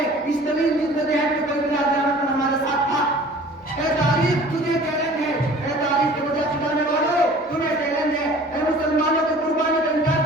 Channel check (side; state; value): both; normal; correlation 0.47